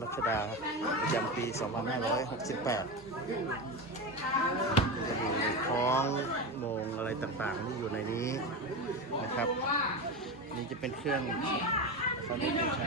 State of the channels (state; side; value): normal; both; correlation 0.20